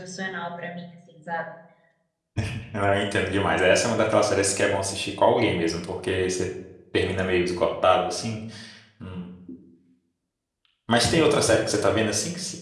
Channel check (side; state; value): both; identical; correlation 1.00